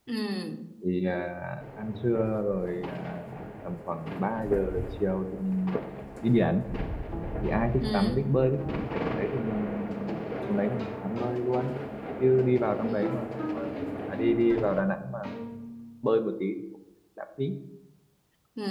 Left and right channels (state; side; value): identical; both; correlation 1.00